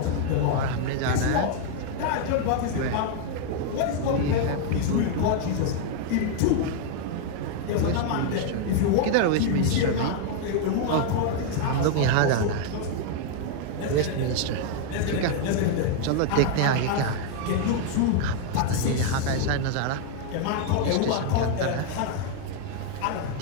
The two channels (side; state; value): both; different; correlation 0.00